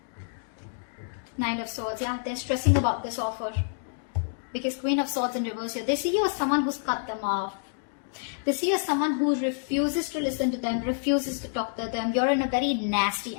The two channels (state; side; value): silent; right; digital silence